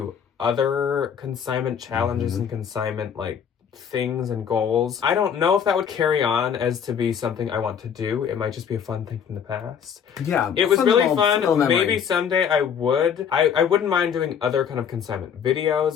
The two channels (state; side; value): quieter; right; 7.8 dB